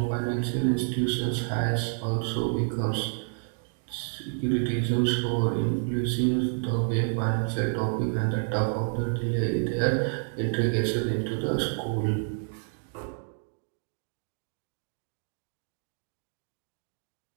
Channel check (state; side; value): silent; left; digital silence